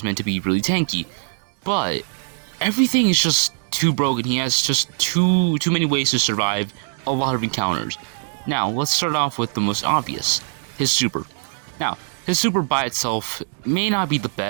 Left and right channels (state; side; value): silent; left; digital silence